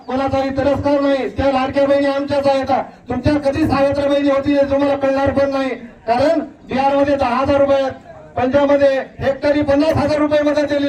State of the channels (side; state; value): both; identical; correlation 1.00